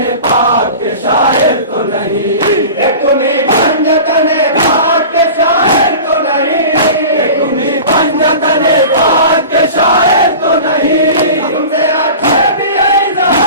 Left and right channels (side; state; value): both; inverted; correlation -0.37